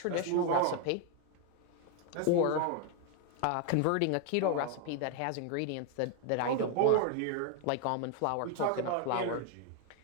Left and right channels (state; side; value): different; both; correlation 0.01